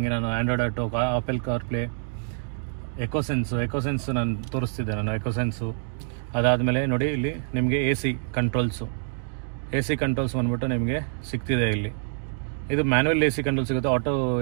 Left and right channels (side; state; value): left; silent; digital silence